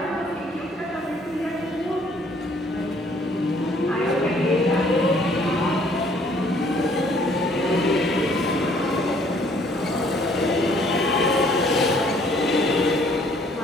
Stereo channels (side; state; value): both; normal; correlation 0.61